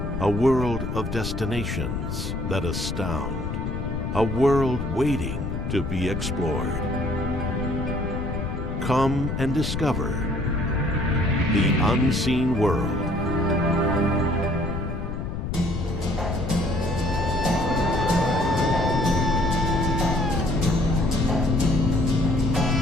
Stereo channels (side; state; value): left; noise; rumble, 4 dB below the sound